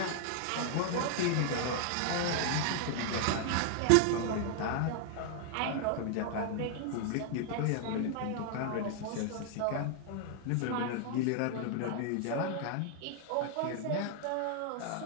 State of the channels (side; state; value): both; different; correlation 0.00